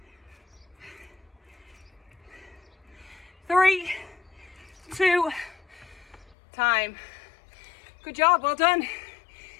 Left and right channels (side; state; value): right; drops out; at 6.4 s